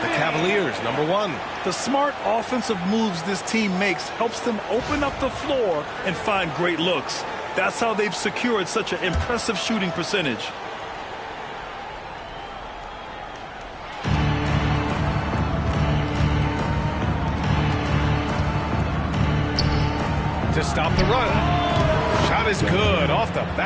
The Cavaliers, number 1. The smart offensive moves this team makes helps them open up the floor and find great looks. That's how they've secured such an impressive shooting percentage. To stop the run. Shot is good. Off the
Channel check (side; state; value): both; identical; correlation 1.00